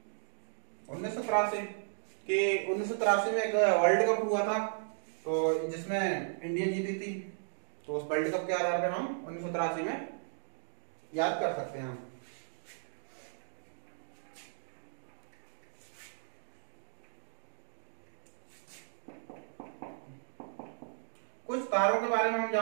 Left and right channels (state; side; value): silent; left; digital silence